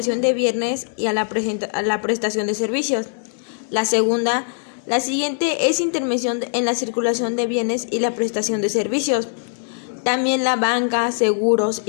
de bienes y a la prestación de servicios. La segunda, la siguiente es intervención en la circulación de bienes y la prestación de servicios. También la banca, seguros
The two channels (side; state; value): right; silent; digital silence